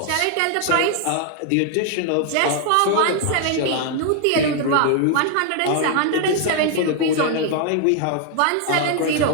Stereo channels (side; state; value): both; different; correlation 0.00